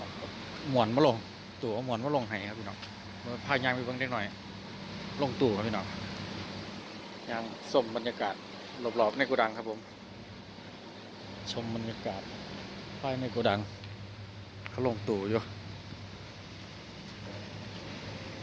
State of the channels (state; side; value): identical; both; correlation 1.00